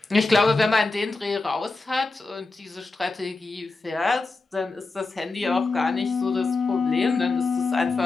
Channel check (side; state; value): right; quieter; 3.6 dB